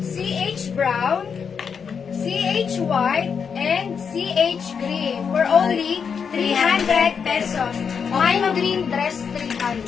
CH brown, CH white, and CH green for only 300 pesos. Mine green dress,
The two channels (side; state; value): right; quieter; 6.5 dB